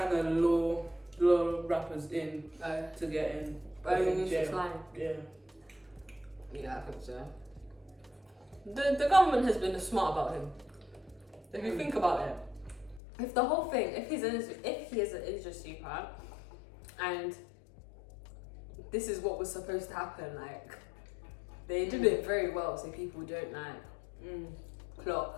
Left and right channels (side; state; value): right; drops out; at 13.0 s